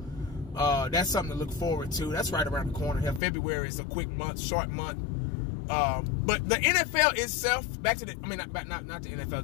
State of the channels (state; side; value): drops out; right; at 3.2 s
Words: that's something to look forward to. That's right around the corner here. February is a quick month, short month. But the NFL itself, back to the, I mean, not the